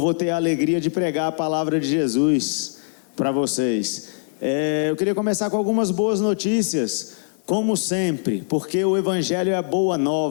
ter a alegria de pregar a palavra de Jesus para vocês. Eu queria começar com algumas boas notícias, como sempre, porque o Evangelho é a boa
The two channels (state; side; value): silent; right; 64 dB below the other